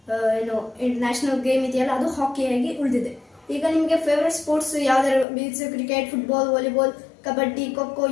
ಏನು ನ್ಯಾಷನಲ್ ಗೇಮ್ ಇದೆಯಲ್ಲ, ಅದು ಹಾಕಿಯಾಗಿ ಉಳಿದಿದೆ. ಈಗ ನಿಮಗೆ ಫೇವ್ರೆಟ್ ಸ್ಪೋರ್ಟ್ಸ್ ಯಾವ್ದಾದ್ರು, means cricket, football, volleyball, kabaddi, kho kho,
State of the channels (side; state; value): right; drops out; at 5.2 s